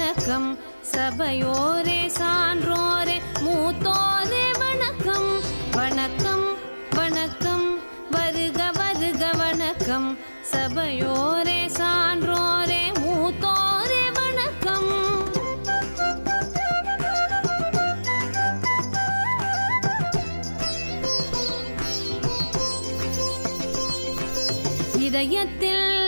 சபையோரே சான்றோரே மூத்தோரே வணக்கம் வணக்கம் வணக்கம் வருக வருக வணக்கம் சபையோரே சான்றோரே மூத்தோரே வணக்கம். இதயத்தில்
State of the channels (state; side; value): inverted; both; correlation -1.00